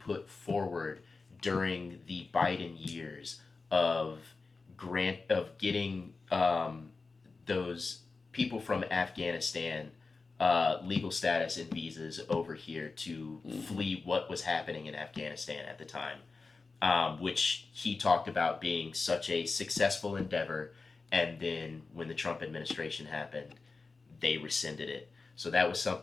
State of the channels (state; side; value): quieter; right; 4.1 dB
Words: forward during the Biden years of getting those people from Afghanistan legal status and visas over here to flee what was happening in Afghanistan at the time, which he talked about being such a successful endeavor, and then when the Trump administration happened, they rescinded it. So that was